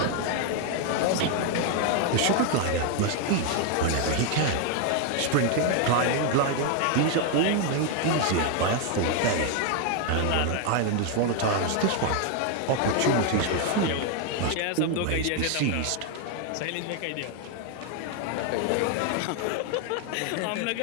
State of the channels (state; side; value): different; both; correlation 0.01